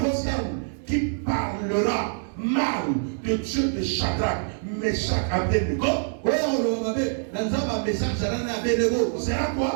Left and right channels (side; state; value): left; silent; digital silence